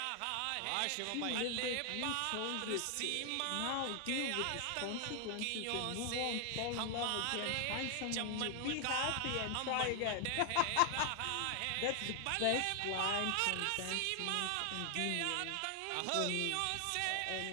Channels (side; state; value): both; different; correlation 0.00